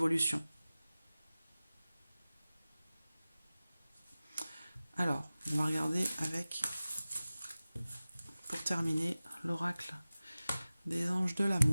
Alors, on va regarder avec, pour terminer, l'oracle des anges de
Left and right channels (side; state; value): both; inverted; correlation -0.97